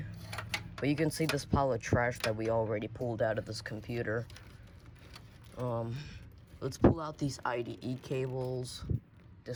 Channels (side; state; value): both; identical; correlation 1.00